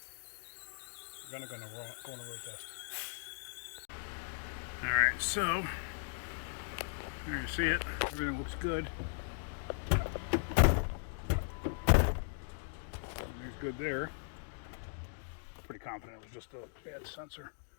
going to go on a road test. All right, so there you see it. Everything looks good. Everything's good there. Pretty confident it was just a bad sensor.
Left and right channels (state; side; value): silent; right; digital silence